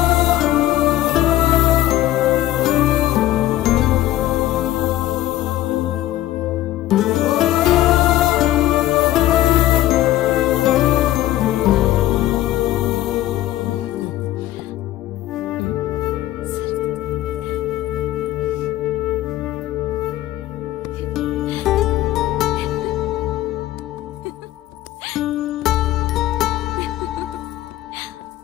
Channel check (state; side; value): quieter; right; 14.7 dB